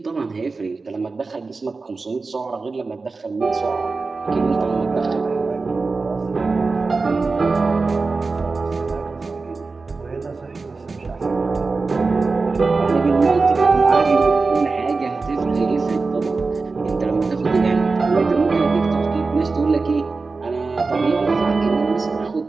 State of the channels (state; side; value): quieter; left; 4.0 dB